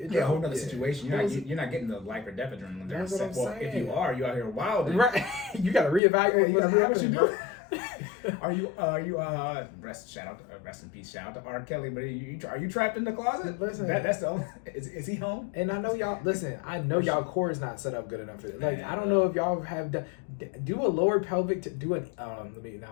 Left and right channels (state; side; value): drops out; right; at 6.0 s